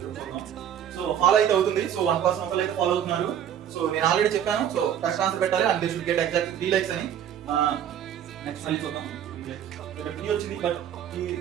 చూద్దాం. సో ఫాలో అయితే అవుతుంది. సో 1% ఒకళ్ళు అయితే ఫాలో అవుతున్నారు. సో నేను ఆల్రెడీ చెప్పాను. సో కరెక్ట్ ఆన్సర్ పెట్టాలి and they should get exact 3 likes అని. నెక్స్ట్ మళ్ళీ చూద్దాం. ఇక్కడ 3 వచ్చింది but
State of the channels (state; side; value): quieter; left; 9.7 dB